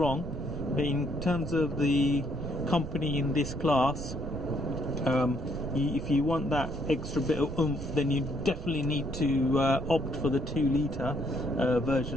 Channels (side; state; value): right; noise; rumble, 10 dB below the sound